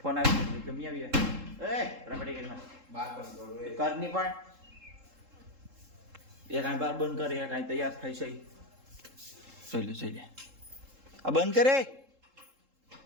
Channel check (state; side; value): late; left; 3.7 ms